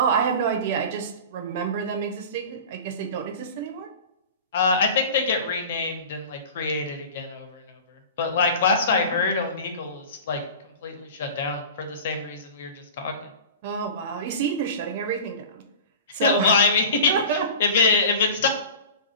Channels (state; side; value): inverted; both; correlation -0.36